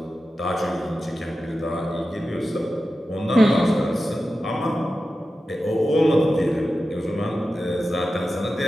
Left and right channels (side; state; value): both; normal; correlation 0.92